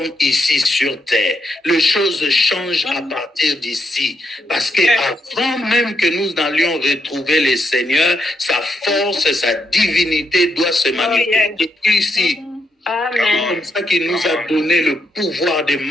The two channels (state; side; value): normal; both; correlation 0.79